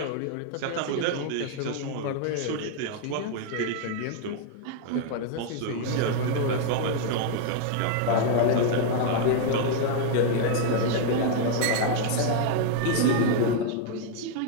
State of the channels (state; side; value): different; both; correlation 0.00